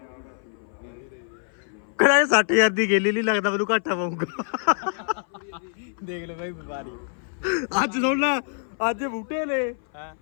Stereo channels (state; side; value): silent; right; 59 dB below the other